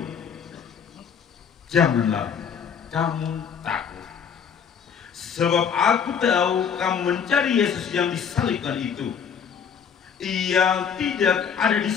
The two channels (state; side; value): quieter; right; 7.1 dB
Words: "Janganlah kamu takut. Sebab aku tahu kamu mencari Yesus yang disalibkan itu. Ia tidak ada di